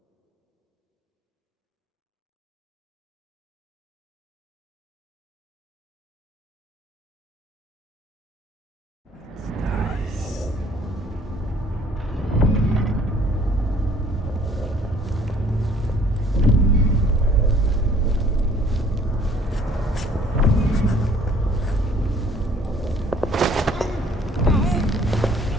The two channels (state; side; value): normal; both; correlation 0.57